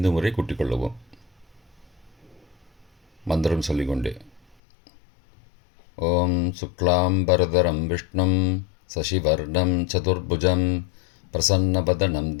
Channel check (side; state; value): right; drops out; at 4.5 s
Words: முறை கூட்டிக்கொள்ளவும். மந்திரம் சொல்லிக்கொண்டே. ஓம் சுக்லாம்பரதரம் விஷ்ணும் சசிவர்ணம் சதுர்புஜம் பிரசன்னவதனம்